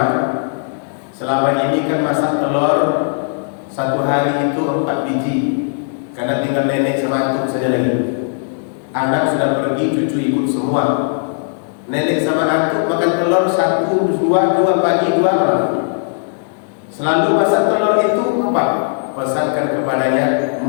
selama ini kan masak telur satu hari itu 4 biji, karena tinggal nenek sama antuk saja lagi. Anak sudah pergi, cucu ikut semua. Nenek sama antuk makan telur 1-2 pagi 2 malam. Selalu masak telur itu 4. Pesankan kepadanya,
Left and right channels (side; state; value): right; silent; digital silence